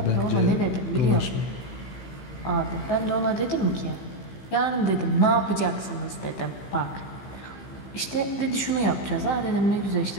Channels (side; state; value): right; late; 15 ms